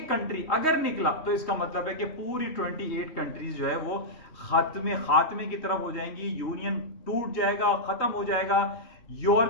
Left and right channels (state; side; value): late; right; 3.2 ms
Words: कंट्री अगर निकला, तो इसका मतलब है कि पूरी 28 कंट्रीज जो है वो खात्मे की तरफ हो जाएंगी, यूनियन टूट जाएगा, खत्म हो जाएगा।